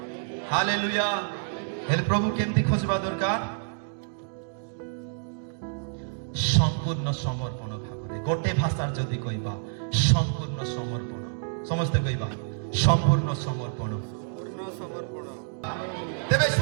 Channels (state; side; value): silent; left; digital silence